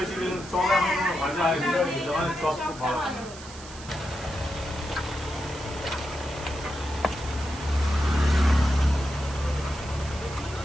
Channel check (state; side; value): noise; right; hiss, 16 dB below the sound